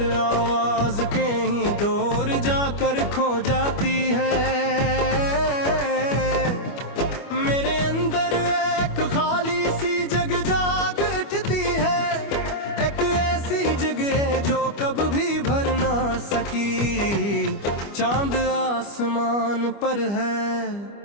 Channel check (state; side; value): late; right; 25 ms